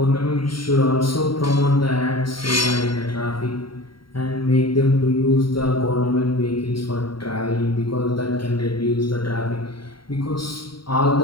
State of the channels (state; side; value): late; right; 0.73 ms